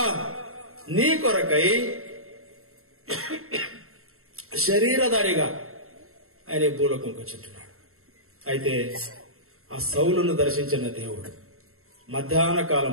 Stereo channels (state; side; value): late; left; 0.62 ms